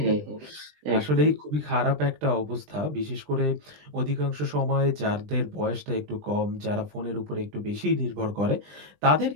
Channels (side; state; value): left; late; 20 ms